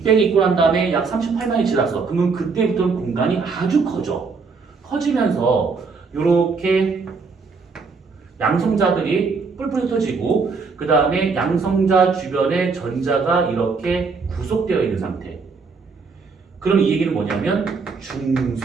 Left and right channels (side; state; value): left; quieter; 4.7 dB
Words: 있고 난 다음에 약 38만이 지났어. 그러면 그때부터는 공간이 아주 커져. 커지면서 요렇게 양성자들이 뿔뿔이 흩어지고 그 다음에 양성자 주변에 전자가 이렇게 구속되어 있는 상태. 그럼 이 얘기는 뭐냐면